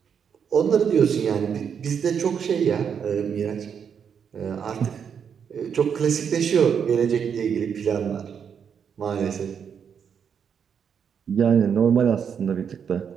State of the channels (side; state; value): left; quieter; 7.3 dB